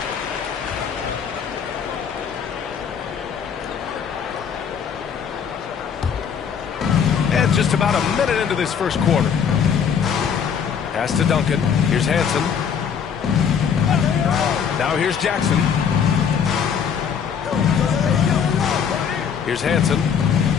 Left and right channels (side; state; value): right; quieter; 7.3 dB